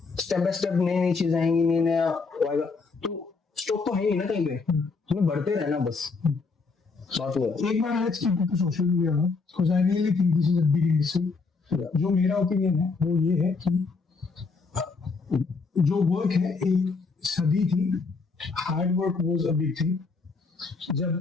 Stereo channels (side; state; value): right; quieter; 4.5 dB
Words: बाय स्टेप नई नई चीजें आएंगी, नई नया आएगा, तो स्टॉप तो है ही ना कहीं पे, हमें बढ़ते रहना बस। बात हुआ एक बार let's keep it to social media now, because I really think this is a big industry. जो मेरा ओपिनियन है वो ये है कि जो वर्क है एक सदी थी, hard work was a big thing. जब